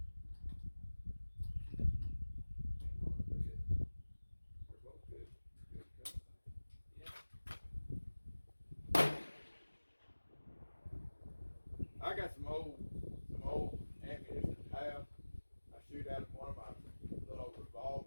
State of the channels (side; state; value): both; inverted; correlation -1.00